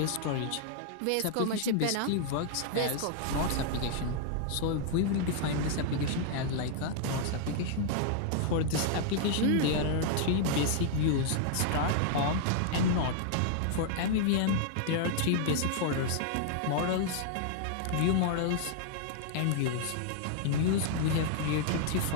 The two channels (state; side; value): different; both; correlation -0.01